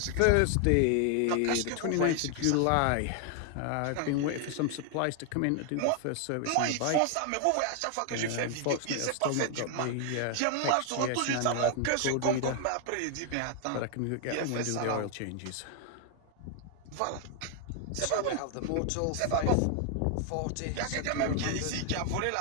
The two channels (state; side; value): different; both; correlation 0.00